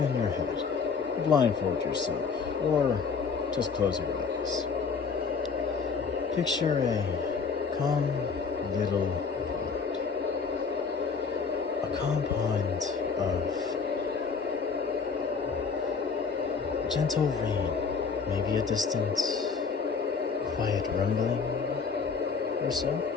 your head, blindfold yourself, or just close your eyes. Picture a calm little pond. A calm pond of gentle rain, maybe a distant quiet rumbling or so.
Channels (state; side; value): quieter; right; 5.4 dB